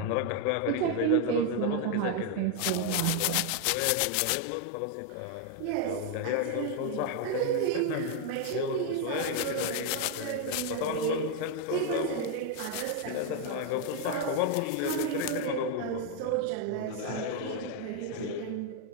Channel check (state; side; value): different; both; correlation 0.01